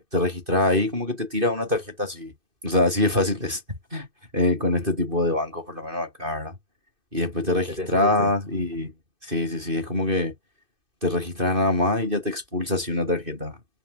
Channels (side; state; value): left; late; 2.6 ms